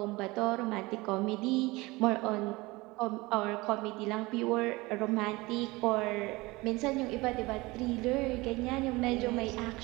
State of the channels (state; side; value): quieter; left; 22.3 dB